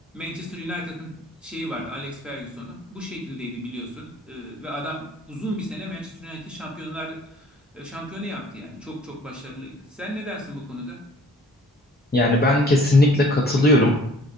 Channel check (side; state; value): both; normal; correlation 0.53